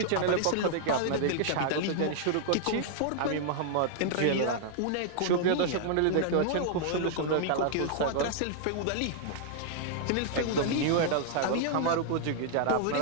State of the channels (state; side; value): different; both; correlation -0.01